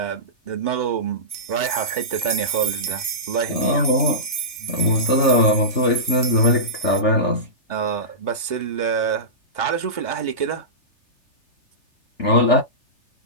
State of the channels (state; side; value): late; right; 3.3 ms